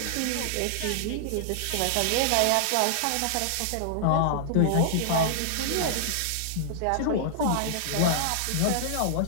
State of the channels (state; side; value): different; both; correlation -0.01